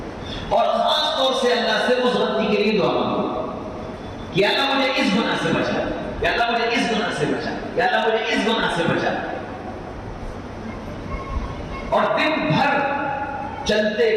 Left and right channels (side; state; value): both; identical; correlation 1.00